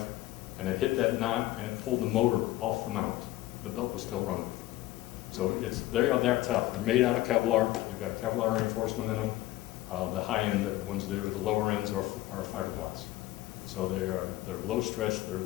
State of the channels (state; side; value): quieter; right; 16.4 dB